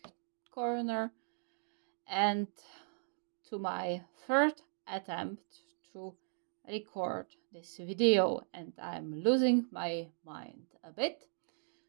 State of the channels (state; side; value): silent; left; digital silence